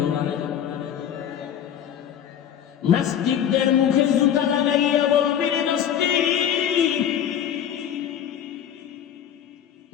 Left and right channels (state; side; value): quieter; right; 9.5 dB